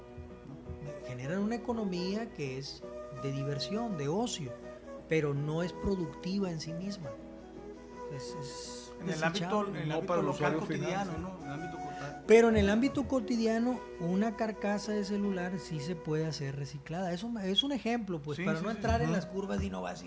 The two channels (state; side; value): identical; both; correlation 1.00